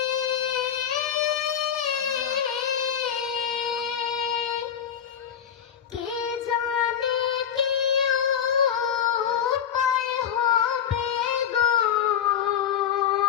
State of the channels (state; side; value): quieter; right; 8.8 dB